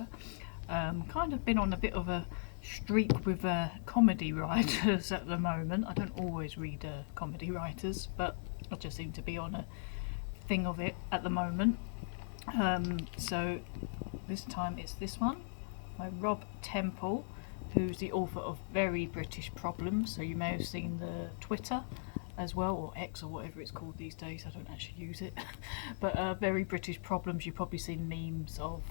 Kind of been on a bit of a streak with comedy writers at the moment. I don't always read comedy writers, but I just seem to be on a thing of it at the moment. So this time it's this one by Rob Temple, who's the author of Very British Problems. So you may have seen the Twitter as well, or X or whatever it's called these days. I don't actually use it. But Very British Problems you've probably seen memes of,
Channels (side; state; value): right; silent; digital silence